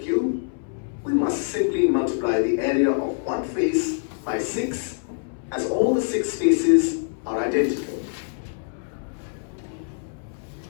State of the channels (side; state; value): right; silent; 62 dB below the other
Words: we must simply multiply the area of one face by 6, as all the 6 faces are identical.